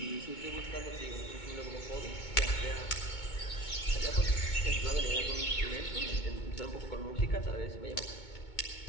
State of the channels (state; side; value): late; right; 2.2 ms